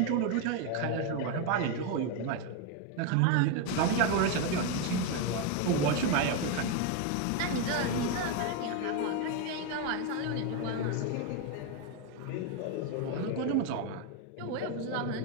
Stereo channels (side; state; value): both; different; correlation 0.01